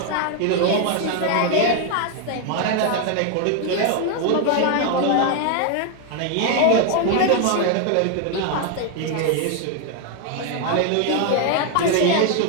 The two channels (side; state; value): both; different; correlation 0.00